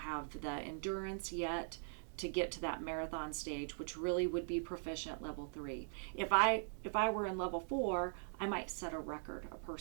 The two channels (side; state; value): left; silent; digital silence